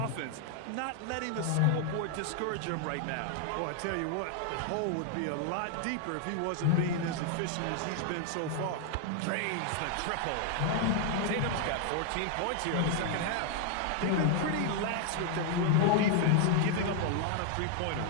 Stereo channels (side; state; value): both; different; correlation 0.00